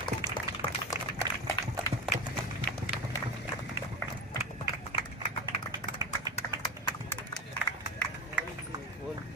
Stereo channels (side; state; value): both; normal; correlation 0.26